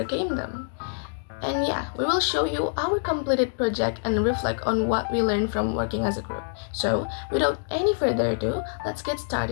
them. And yeah, we will show you our completed project and reflect on what we learned from working as a group. So, without any further ado, let's get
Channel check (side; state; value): right; silent; digital silence